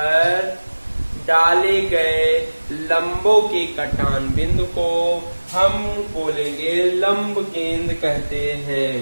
डाले गए लंबों के कटान बिंदु को हम बोलेंगे लंब केंद्र कहते हैं।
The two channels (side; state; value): both; inverted; correlation -1.00